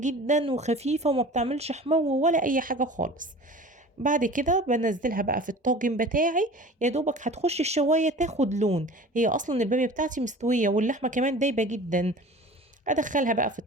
وخفيفه وما بتعملش حمو ولا اي حاجه خالص. بعد كده بنزلها بقى في الطاجن بتاعي. يا دوبك هتخش الشوايه تاخد لون، هي اصلا الباميه بتاعتي مستويه واللحمه كمان دايبه جدا. ادخلها بقى في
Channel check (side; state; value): both; normal; correlation 0.41